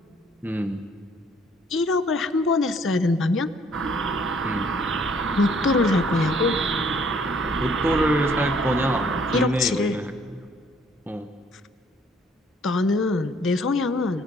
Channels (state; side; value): normal; both; correlation 0.61